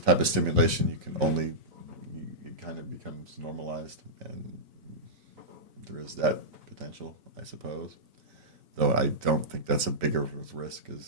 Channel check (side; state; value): left; late; 3.9 ms